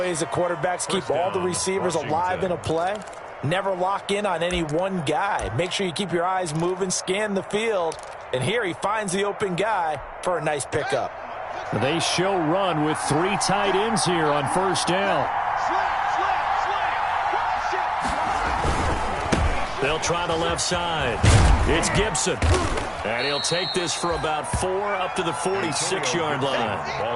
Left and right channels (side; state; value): both; identical; correlation 1.00